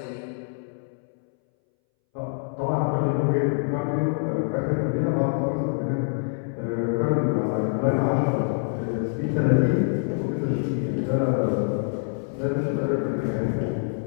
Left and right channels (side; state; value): right; silent; 61 dB below the other